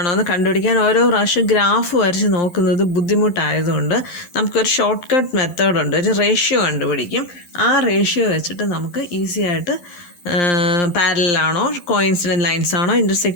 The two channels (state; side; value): late; right; 11 ms